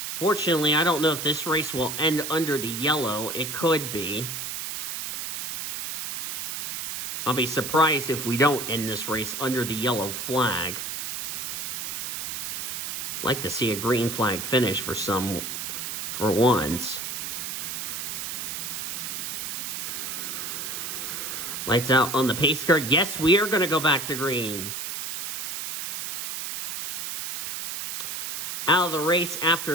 Fortunately, I don't know if this race will end under the yellow. It could be. I'll be surprised if we don't end this race under the yellow flag. Like to see a green flag finish for once. Lights out on the pace car. Yes, we are going to go back to green. Out of the race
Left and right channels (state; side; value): noise; right; hiss, 5 dB below the sound